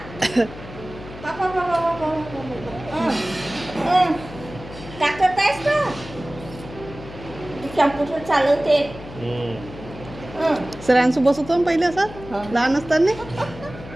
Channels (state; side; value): noise; left; hum, 14 dB below the sound